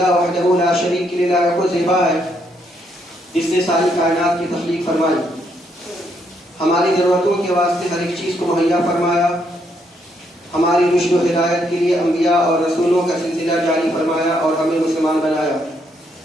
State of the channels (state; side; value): normal; both; correlation 0.74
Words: وحدہ لا شریک له کو زیبا ہے جس نے ساری کائنات کی تخلیق فرمائی، ہماری ضرورتوں کے واسطے ہر ایک چیز کو مہیا فرمایا، ہماری رشد و ہدایت کے لیے انبیاء اور رسولوں کا سلسلہ جاری فرمایا اور ہمیں مسلمان بنایا.